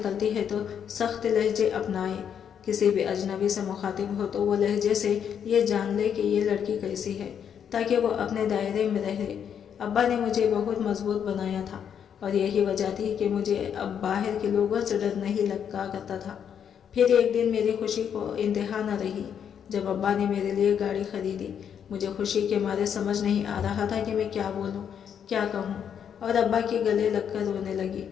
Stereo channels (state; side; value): quieter; right; 8.2 dB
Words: ہے تو سخت لہجے اپنائے۔ کسی بھی اجنبی سے مخاطب ہو تو وہ لہجے سے یہ جان لے کہ یہ لڑکی کیسی ہے تاکہ وہ اپنے دائرے میں رہے۔ ابا نے مجھے بہت مضبوط بنایا تھا اور یہی وجہ تھی کہ مجھے اب باہر کے لوگوں سے ڈر نہیں لگا کرتا تھا۔ پھر ایک دن میری خوشی کو انتہا نہ رہی جب ابا نے میرے لیے گاڑی خریدی۔ مجھے خوشی کے مارے سمجھ نہیں آ رہا تھا کہ میں کیا بولوں، کیا کہوں، اور ابا کے گلے لگ کر رونے لگی۔